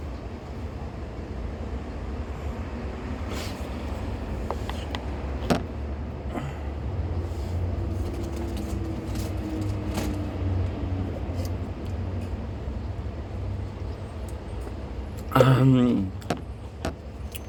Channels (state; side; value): identical; both; correlation 1.00